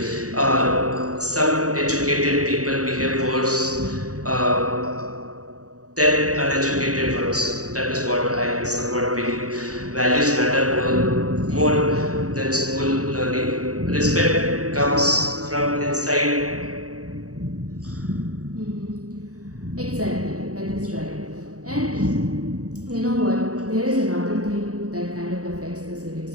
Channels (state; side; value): late; left; 0.66 ms